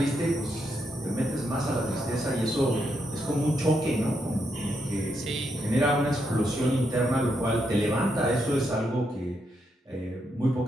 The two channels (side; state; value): both; normal; correlation 0.80